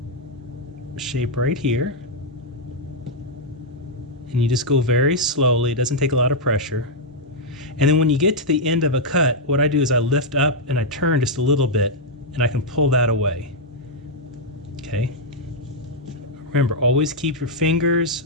shape right here. And you just go very slowly, it doesn't take a lot of pressure. And then when you get to the end of a cut, what I do is I lift up and I turn just a little bit and I can pull that away. Okay. Remember, always keep your fingers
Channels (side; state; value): both; normal; correlation -0.04